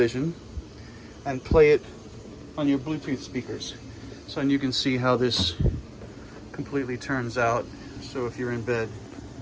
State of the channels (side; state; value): both; identical; correlation 1.00